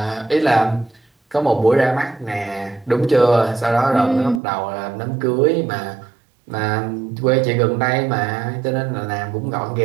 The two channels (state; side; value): drops out; left; at 4.4 s